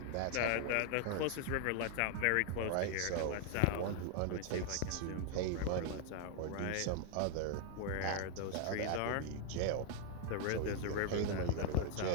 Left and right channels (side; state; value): both; different; correlation 0.00